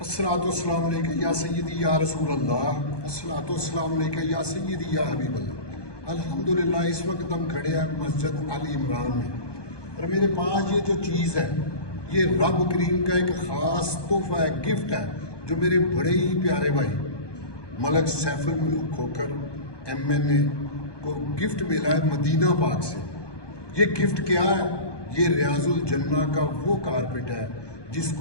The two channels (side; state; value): right; late; 1.2 ms